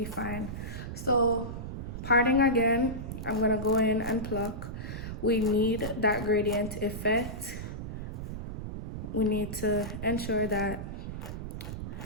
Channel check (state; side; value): noise; right; rumble, 6 dB below the sound